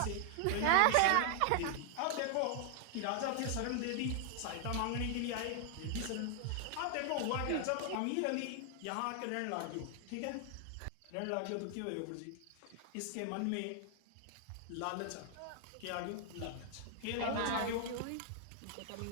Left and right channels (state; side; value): different; both; correlation 0.00